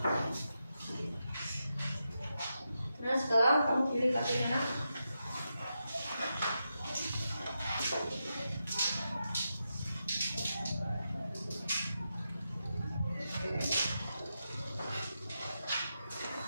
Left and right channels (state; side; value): inverted; both; correlation -0.87